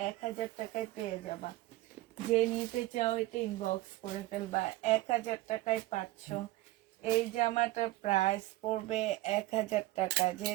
1000 টাকায় পেয়ে যাবা। যে নিতে চাও এটা ইনবক্স করে ফেলবা। 1000 টাকায় পাচ্ছ। এই জামাটার প্রাইস পড়বে 1000 টাকা। যে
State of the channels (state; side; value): quieter; left; 17.9 dB